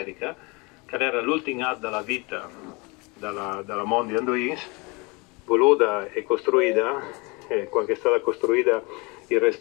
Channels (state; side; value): quieter; right; 27.9 dB